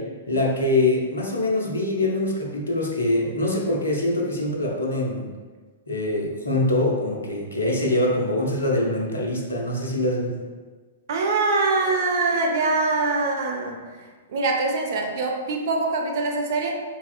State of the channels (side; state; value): both; inverted; correlation -0.33